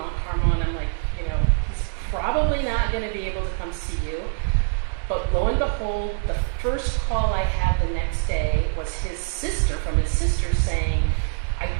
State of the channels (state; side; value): silent; left; 58 dB below the other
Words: Carmel, and I'm like, he's probably not going to be able to come see you. But lo and behold, the first call I had the next day was his sister, from his sister, saying, "I